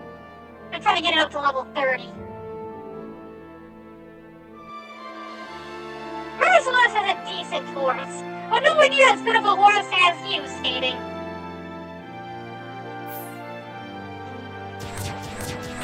I'm trying to get it up to level 30. Merciless is a decent horse, but nowhere near as good of a horse as you, Skating.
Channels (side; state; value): both; identical; correlation 1.00